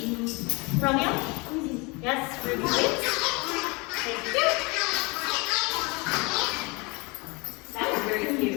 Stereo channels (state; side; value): quieter; right; 27.3 dB